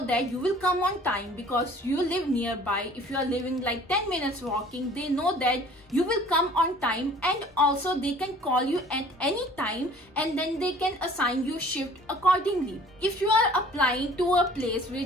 that you will come on time because you live nearby. If you are living like 10 minutes walking, they know that you will come on time, and also they can call you at any time and then they can assign you shift accordingly. If you are applying to a place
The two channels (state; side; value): normal; both; correlation 0.51